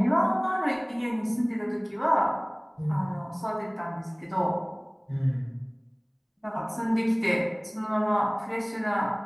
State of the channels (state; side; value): identical; both; correlation 1.00